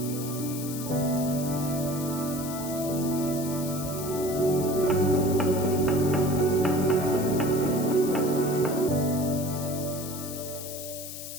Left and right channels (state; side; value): noise; left; hiss, 10 dB below the sound